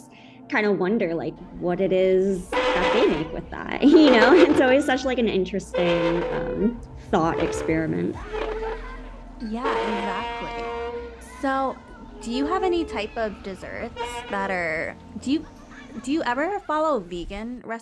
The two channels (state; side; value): identical; both; correlation 1.00